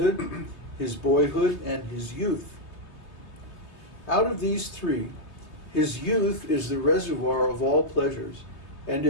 his boyhood, and his youth. Out of these three, his youth is the reservoir of all pleasures, and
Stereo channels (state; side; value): late; right; 3.2 ms